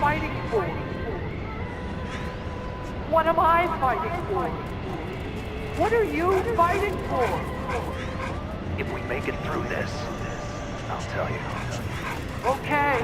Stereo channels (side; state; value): both; identical; correlation 1.00